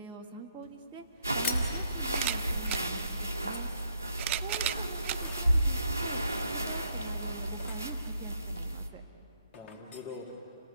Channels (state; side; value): inverted; both; correlation -0.73